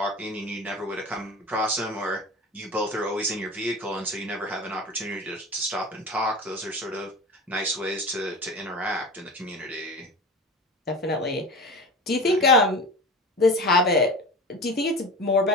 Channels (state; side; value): normal; both; correlation 0.32